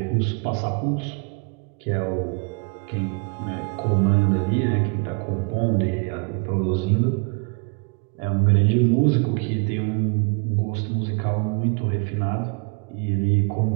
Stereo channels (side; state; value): left; quieter; 33.8 dB